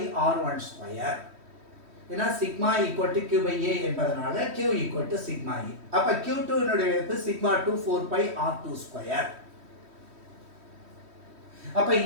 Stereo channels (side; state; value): left; late; 3.1 ms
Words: ஏன்னா சிக்மா ஈக்குவல் டு Q/A என்பதனால Q equal to sigma E. அப்ப Q2 னுடைய மதிப்பு σ2 4πR22. அப்ப